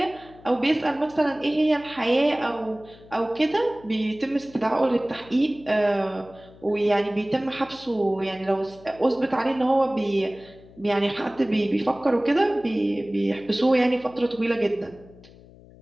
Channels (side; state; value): left; noise; hum, 23 dB below the sound